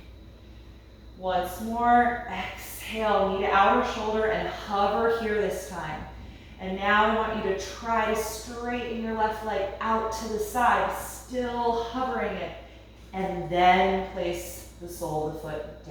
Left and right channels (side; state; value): both; identical; correlation 1.00